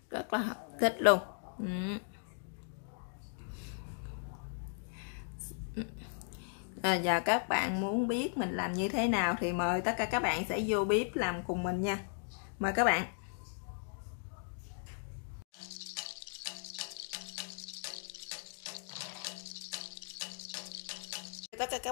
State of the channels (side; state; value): right; silent; digital silence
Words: Rất là thích luôn. Và các bạn muốn biết mình làm như thế nào thì mời tất cả các bạn sẽ vô bếp làm cùng mình nha. Mời các bạn. Tất cả